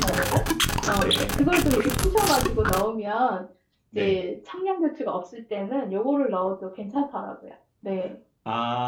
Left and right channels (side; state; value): both; identical; correlation 1.00